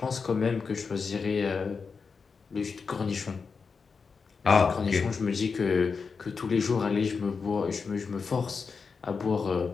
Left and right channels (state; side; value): quieter; right; 5.2 dB